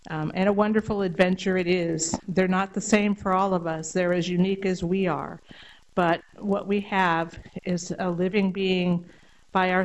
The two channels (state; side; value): identical; both; correlation 1.00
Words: And a wonderful adventure it is. They're not the same for all of us. They're as unique as we are. But what we have is a living being by